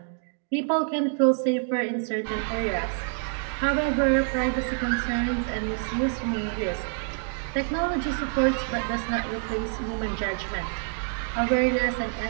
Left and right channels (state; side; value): silent; left; 59 dB below the other